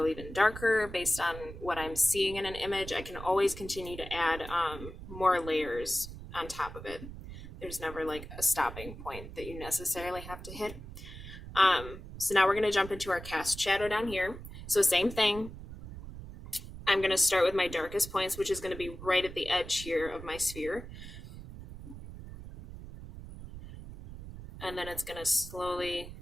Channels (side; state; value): right; noise; rumble, 12 dB below the sound